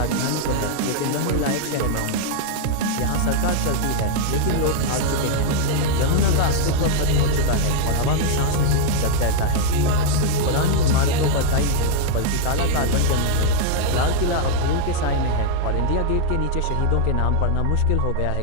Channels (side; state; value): both; different; correlation 0.00